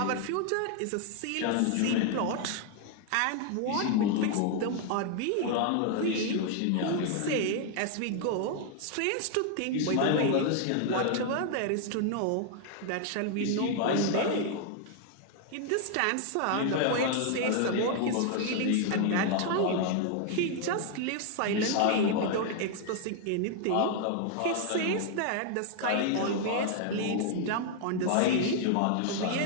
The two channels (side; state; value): both; different; correlation 0.00